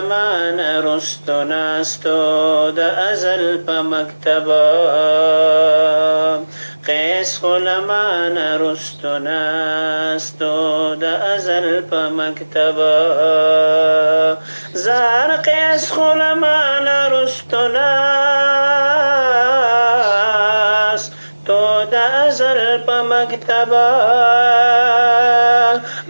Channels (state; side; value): inverted; both; correlation -1.00